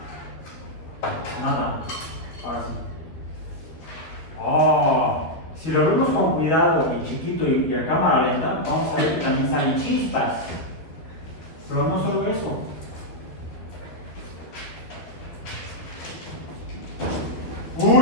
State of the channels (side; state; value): right; late; 12 ms